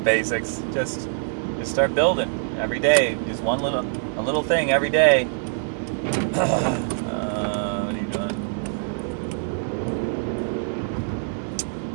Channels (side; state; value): left; silent; 57 dB below the other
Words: basics. Just start building every day. Just a little thing every day. What are you doing?